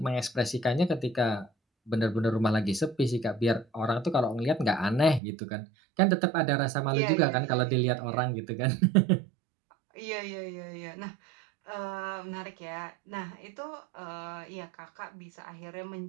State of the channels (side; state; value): left; drops out; at 5.2 s